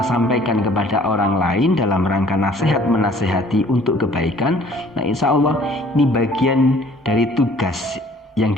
kepada orang lain dalam rangka nasihat menasehati untuk kebaikan. Nah, insya Allah ini bagian dari tugas yang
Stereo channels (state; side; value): normal; both; correlation 0.55